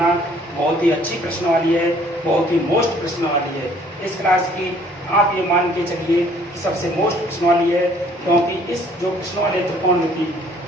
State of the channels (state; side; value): normal; both; correlation 0.59